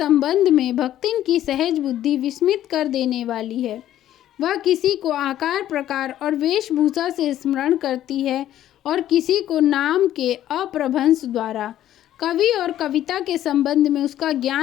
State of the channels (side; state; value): right; quieter; 12.3 dB